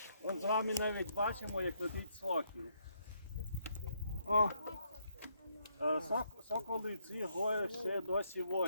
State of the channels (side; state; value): both; inverted; correlation -0.73